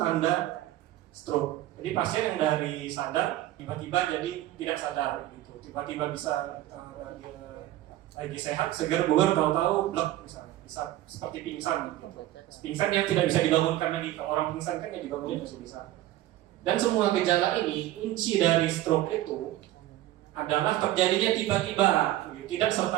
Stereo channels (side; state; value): left; quieter; 14.8 dB